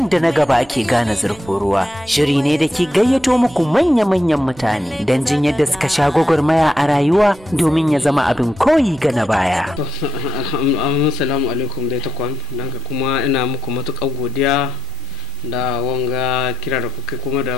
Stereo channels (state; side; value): noise; right; rumble, 23 dB below the sound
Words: da na gaba ake gane zurfin ruwa shiri ne da ke gayyato muku manya-manyan mutane don jin yadda suka sha gwagwarmaya a rayuwa domin ya zama abin koyi ga na baya. Assalamu alaikum dai takwan, don kuma ina muku matuƙar godiya da wanga kira da kuka kuma da